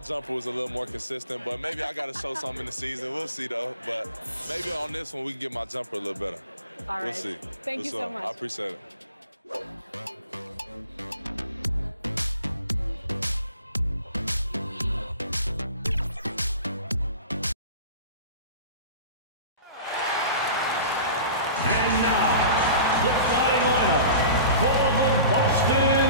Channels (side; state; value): both; inverted; correlation -0.40